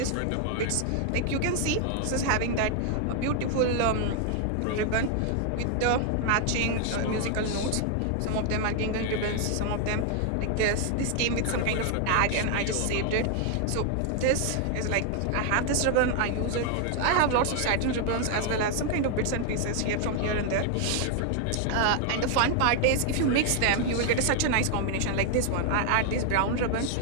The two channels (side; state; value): both; different; correlation 0.00